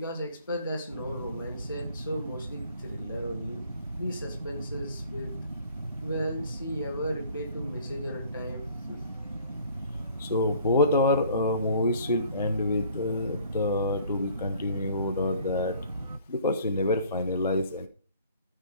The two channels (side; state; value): both; inverted; correlation -0.54